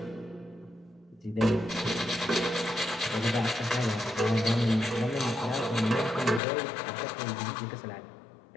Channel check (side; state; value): right; drops out; at 6.4 s